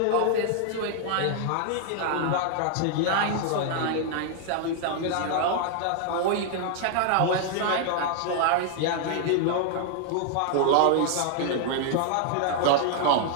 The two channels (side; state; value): both; different; correlation 0.00